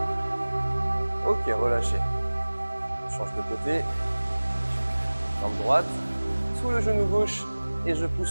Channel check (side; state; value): both; inverted; correlation -1.00